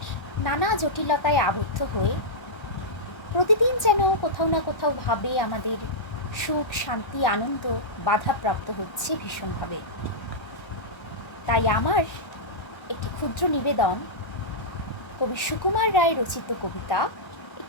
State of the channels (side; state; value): right; late; 1.3 ms